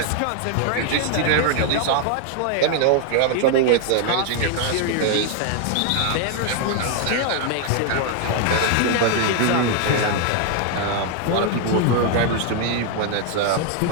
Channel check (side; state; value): both; different; correlation 0.00